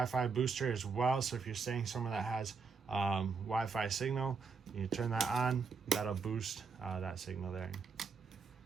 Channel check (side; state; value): left; quieter; 5.2 dB